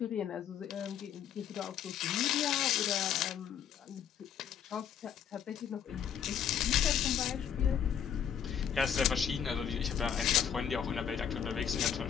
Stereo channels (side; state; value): right; quieter; 8.6 dB